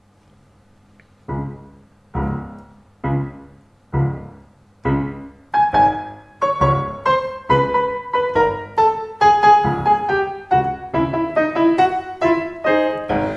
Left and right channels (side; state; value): both; identical; correlation 1.00